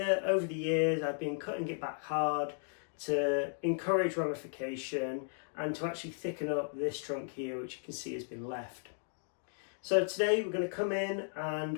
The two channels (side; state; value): right; silent; digital silence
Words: over the years I've been cutting it back hard to encourage ramification and to actually thicken up this trunk here, which you can see has been left. So today we're going to come in